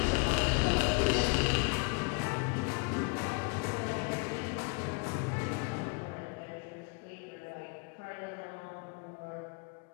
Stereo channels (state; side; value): quieter; right; 30.7 dB